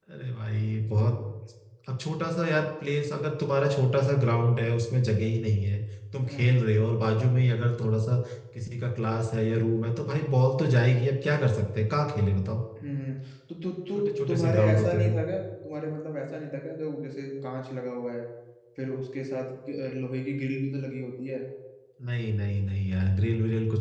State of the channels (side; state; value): both; identical; correlation 1.00